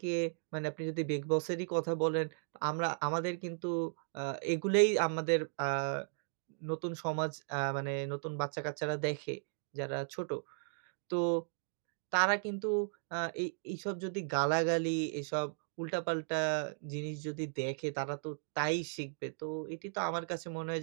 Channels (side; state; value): left; silent; digital silence